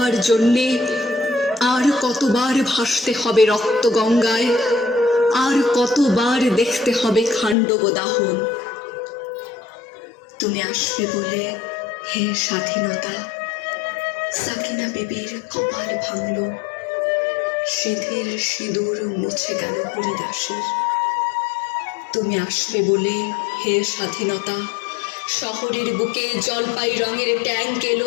জন্যে আর কতবার ভাসতে হবে রক্ত গঙ্গায়, আর কতবার দেখতে হবে খাণ্ডব দাহন। তুমি আসবে বলে হে স্বাধীনতা, সাকিনা বিবির কপাল ভাঙল, সিঁথির সিঁদুর মুছে গেল হরিদাসের। তুমি আসবে বলে হে স্বাধীনতা, শহরের বুকে জলপাই রঙের ট্যাঙ্ক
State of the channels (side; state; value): right; drops out; at 7.6 s